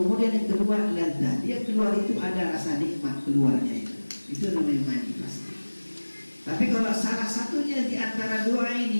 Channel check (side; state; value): both; inverted; correlation -1.00